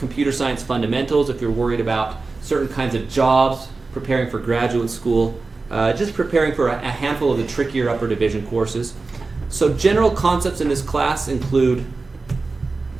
science fundamentals, if you're worried about certain kinds of jobs, preparing for graduate school, just preparing for a handful of the trickier upper division courses. So general concepts in this class include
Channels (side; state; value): left; quieter; 3.8 dB